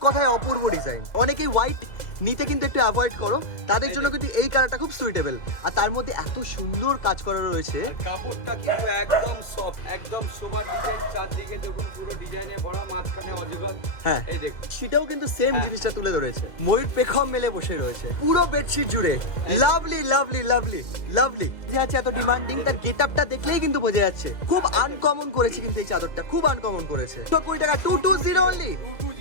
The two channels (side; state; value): right; late; 2.0 ms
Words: কথায় অপূর্ব ডিজাইন। অনেকেই হোয়াইট নিতে কিন্তু একটু অ্যাভয়েড করো, তাদের জন্য কিন্তু এই কালারটা খুব সুইটেবল। আর তার মধ্যে এত সুন্দর কাজ করা রয়েছে, কাপড়টা কিন্তু একদম সফট, একদম সোবার ডিজাইন, চারদিকে দেখুন পুরো ডিজাইনে ভরা, মাঝখানে অজগর। হ্যাঁ এই দেখুন, সেটাও কিন্তু সেম জিনিসটা তুলে ধরেছে। ময়ূর পেখম মেলে বসে রয়েছে পুরো বেডশিট জুড়ে। লাভলি লাভলি লাভলি লাভলি যে আছে এত ডিমান্ডিং, তার গেটআপটা দেখলেই কিন্তু বোঝা যাচ্ছে। খুব আনকমন করেছে কিন্তু এই চাদরটা, খুব আনকমন করেছে। 20 টাকা 220 অনলি।